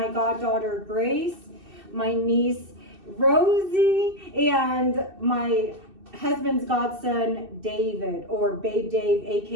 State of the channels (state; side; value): late; left; 2.6 ms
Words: goddaughter Grace, my niece Rosie, and my husband's godson David, or Babe Dave,